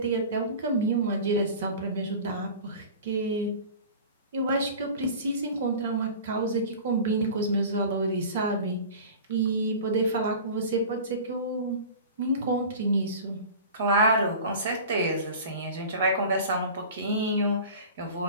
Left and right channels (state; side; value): inverted; both; correlation -0.38